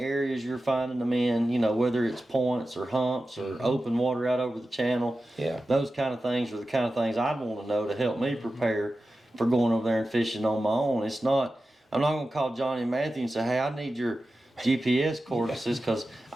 you're finding them in, you know, whether it's points or humps or open water out over the channel. Yeah. Those kind of things are the kind of things I'd want to know to help me prepare for going over there and fishing on my own. It's not, I'm not going to call Johnny and Matthew and say, hey, I need your GPS coordinates because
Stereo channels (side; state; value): both; normal; correlation 0.93